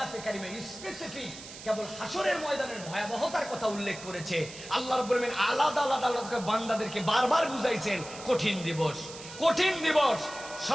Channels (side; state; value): right; noise; hiss, 14 dB below the sound